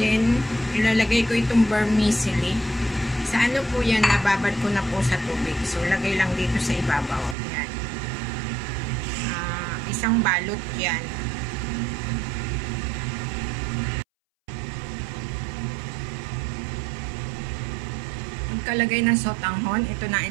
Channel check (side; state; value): left; drops out; at 7.4 s